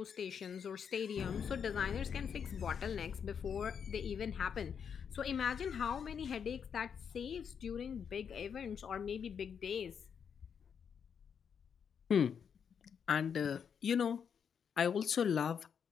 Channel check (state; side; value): quieter; right; 7.2 dB